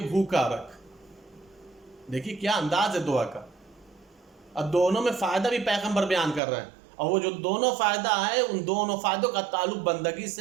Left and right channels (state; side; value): drops out; left; at 6.4 s